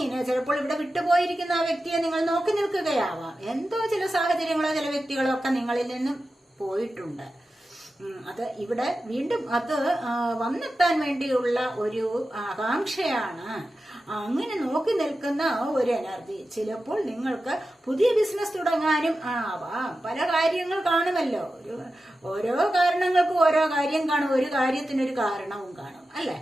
ചിലപ്പോൾ ഇവിടെ വിട്ടുപോയിരിക്കുന്ന ആ വ്യക്തിയെ നിങ്ങൾ നോക്കി നിൽക്കുകയാവാം. എന്തോ ചില സാഹചര്യങ്ങളോ ചില വ്യക്തികളോ ഒക്കെ നിങ്ങളിൽ നിന്നും പോയിട്ടുണ്ട്. അത് ഇവിടെ വീണ്ടും അത് വന്നെത്താൻ വേണ്ടിയുള്ള ഒരു ആകാംക്ഷയാണ്. അങ്ങനെ നോക്കി നിൽക്കുന്ന ഒരു എനർജി. ചിലപ്പോൾ നിങ്ങൾക്ക് പുതിയ ബിസിനസ് തുടങ്ങാനും ആവാം. പല കാര്യങ്ങൾ കാണുമല്ലോ. ഓരോ കാരണങ്ങൾക്കും ഓരോ കാര്യം കാണും, ഒരു കാര്യത്തിനൊരു കാരണവും കാണും, അല്ലെ?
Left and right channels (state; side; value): normal; both; correlation 0.92